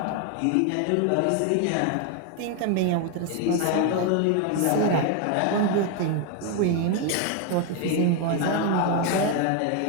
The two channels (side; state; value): both; different; correlation 0.01